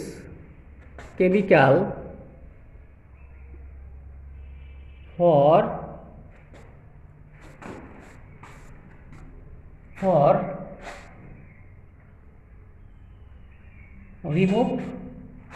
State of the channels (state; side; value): identical; both; correlation 1.00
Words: chemical for remove